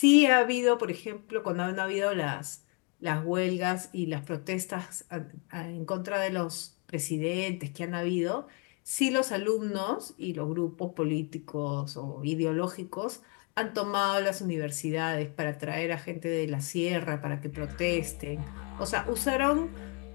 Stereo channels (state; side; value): quieter; right; 33.9 dB